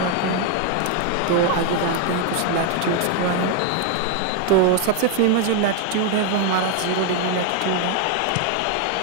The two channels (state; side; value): different; both; correlation 0.01